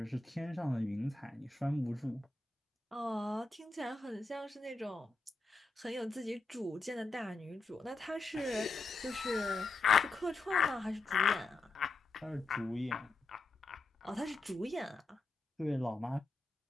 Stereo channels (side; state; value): right; quieter; 3.4 dB